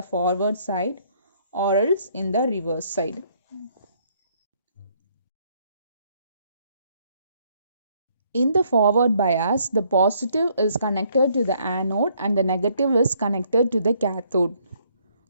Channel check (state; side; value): inverted; both; correlation -0.67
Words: forward side or else in the reverse side. In the forward bias, the positive is connected to the anode and the negative is connected to the cathode.